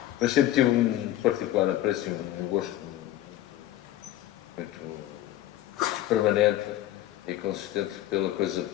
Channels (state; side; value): quieter; right; 13.7 dB